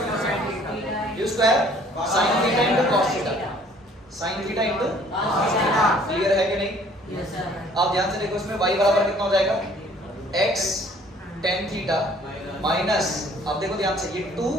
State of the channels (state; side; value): normal; both; correlation 0.56